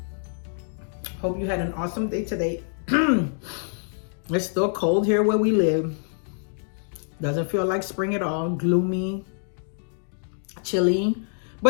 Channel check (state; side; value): silent; right; digital silence